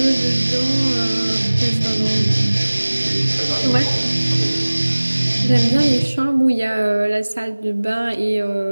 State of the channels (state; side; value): inverted; both; correlation -1.00